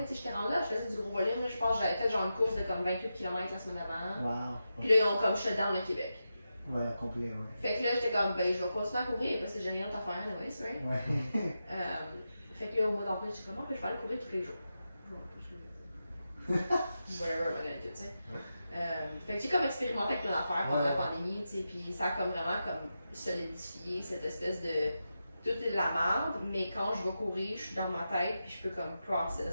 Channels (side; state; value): both; inverted; correlation -0.89